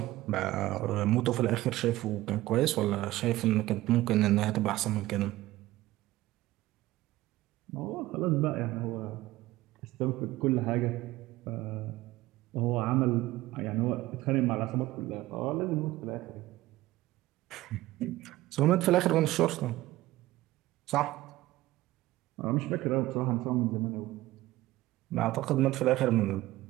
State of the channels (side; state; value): left; quieter; 17.1 dB